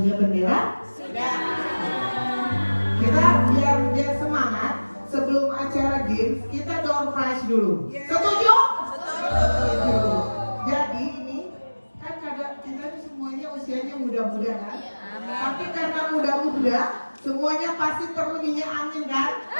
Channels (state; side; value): inverted; both; correlation -1.00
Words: bendera. Sudah. Kita biar semangat sebelum acara games kita door prize dulu. Setuju? Setuju. Jadi ini kan kita ini semuanya usianya muda-muda kan? Tapi karena muda-muda semuanya pasti perlu minyak angin kan?